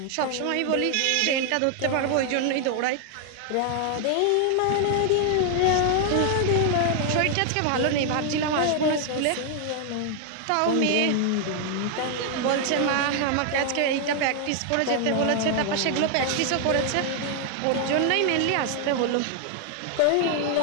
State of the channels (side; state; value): both; different; correlation 0.00